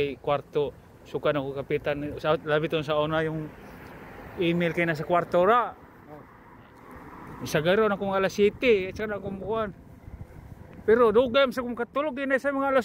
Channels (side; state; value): both; identical; correlation 1.00